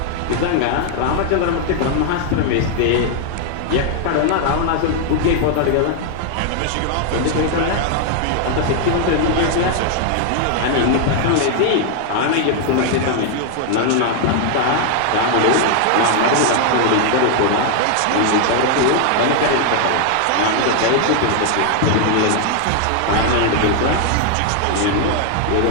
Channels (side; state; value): both; different; correlation 0.00